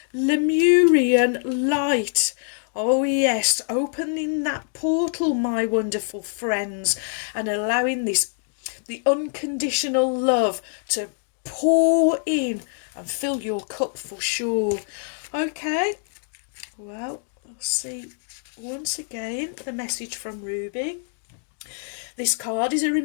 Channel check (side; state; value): right; silent; digital silence